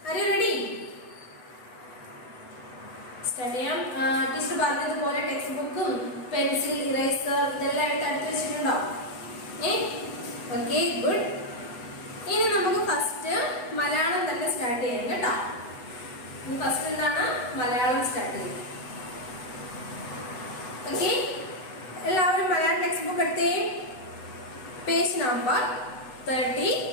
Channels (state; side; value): late; right; 8.0 ms